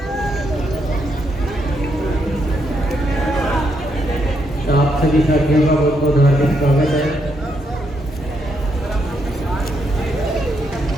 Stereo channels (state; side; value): normal; both; correlation 0.78